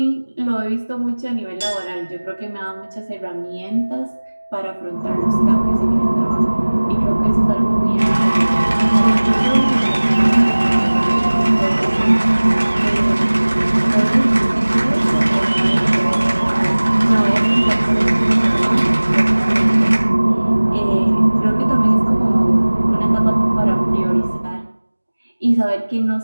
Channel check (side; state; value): both; inverted; correlation -1.00